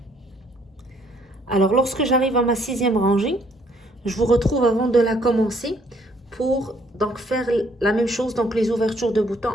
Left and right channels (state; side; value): normal; both; correlation 0.65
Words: Alors lorsque j'arrive à ma 6e rangée, je vous retrouve avant de la commencer pour donc faire la même chose, donc les ouvertures de boutons